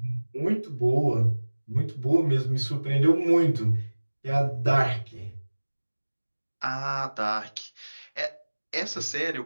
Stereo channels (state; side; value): inverted; both; correlation -1.00